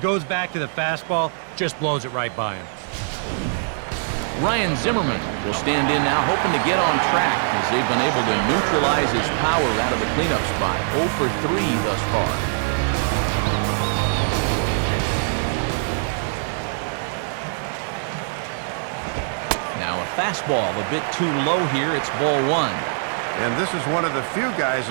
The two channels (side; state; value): left; silent; 60 dB below the other